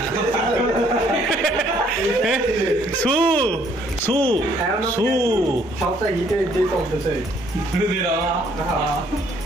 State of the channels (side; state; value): both; normal; correlation 0.64